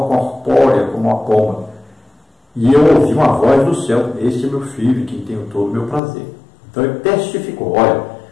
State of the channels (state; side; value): drops out; right; at 6.0 s